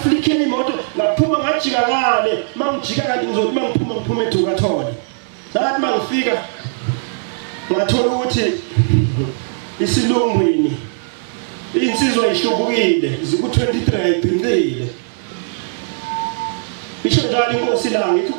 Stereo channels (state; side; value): silent; left; digital silence